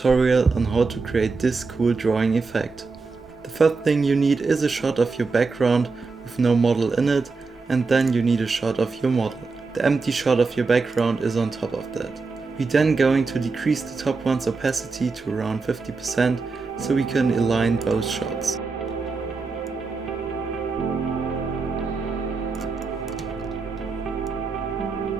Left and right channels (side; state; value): left; quieter; 4.3 dB